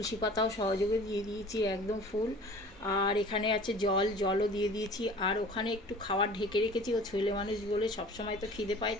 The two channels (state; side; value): normal; both; correlation 0.45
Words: পাতাও সহযোগে দিয়ে দিয়েছি একদম ফুল। আর এখানে আছে জলও দিয়ে দিয়েছি। আর ওখানে একটু খাবার ঢেকে রেখেছি, ও ছেলে মানুষ বলে সবসময় তো খিদে পায়,